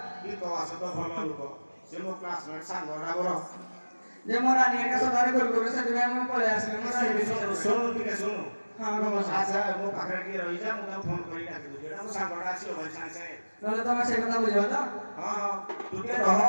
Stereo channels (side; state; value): both; inverted; correlation -1.00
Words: ई तो आसे तो भलो लोक से मो क्लासमेट सांग राबर जे मोरा नियर का सदारे गोल गोल से दिबे हम पळे आसले मोरा हिबे सुनो ठीक है सुनो हाँ का मौसा अच्छा मो पाखरे की रही जा मु फोन करी डाकी दो जेडा मो सांगडा आसी होय सांग से नले तमे से कथा बुझियो त हां हां तू के रह